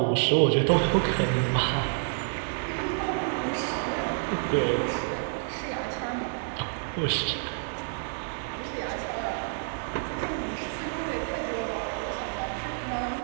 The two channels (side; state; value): left; silent; 59 dB below the other